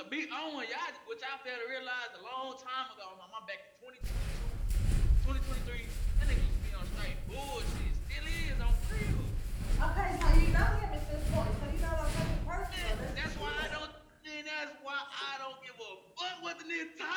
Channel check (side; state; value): both; identical; correlation 1.00